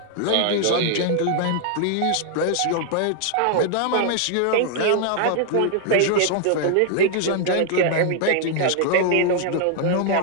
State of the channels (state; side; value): different; both; correlation 0.00